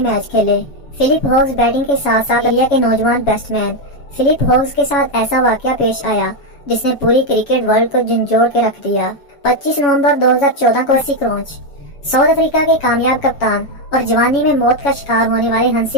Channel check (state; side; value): late; right; 7.2 ms